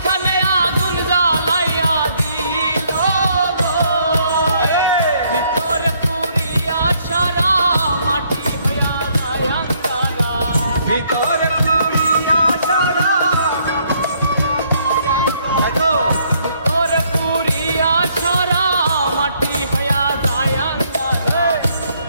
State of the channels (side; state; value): both; inverted; correlation -0.68